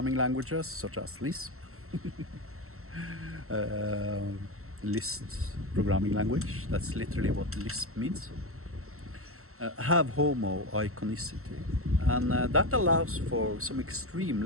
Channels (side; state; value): left; late; 0.63 ms